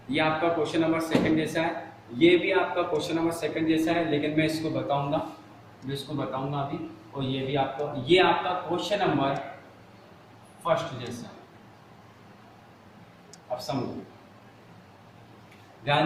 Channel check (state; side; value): identical; both; correlation 1.00